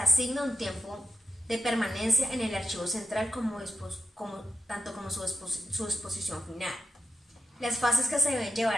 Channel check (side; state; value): both; normal; correlation 0.88